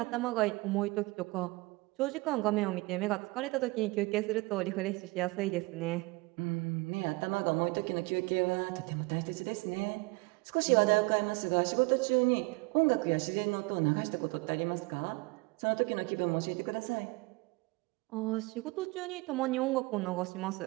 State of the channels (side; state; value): left; quieter; 24.4 dB